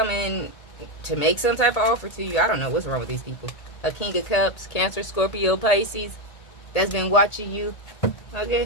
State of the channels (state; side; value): late; right; 1.8 ms